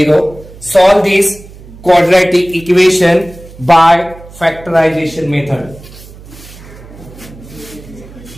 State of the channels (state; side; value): noise; right; hum, 19 dB below the sound